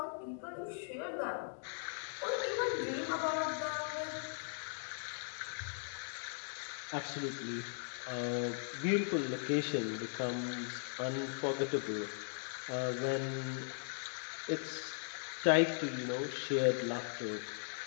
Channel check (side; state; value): right; silent; digital silence